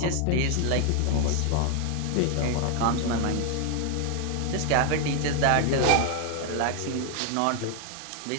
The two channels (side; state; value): both; different; correlation 0.00